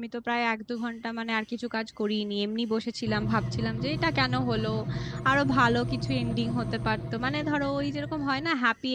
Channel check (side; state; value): both; identical; correlation 1.00